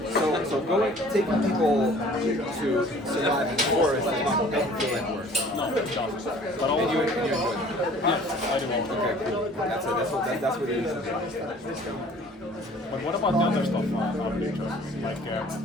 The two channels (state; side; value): normal; both; correlation 0.51